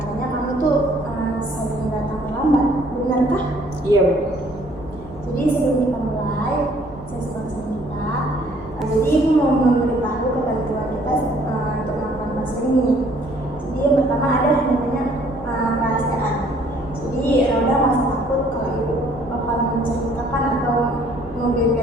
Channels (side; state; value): both; normal; correlation 0.60